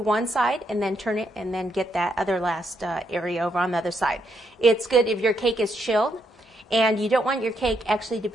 one side and then turn it and then get that other last area over on the other side. It's good if your cake is chilled and you don't want your cake actually to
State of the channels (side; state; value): both; normal; correlation 0.77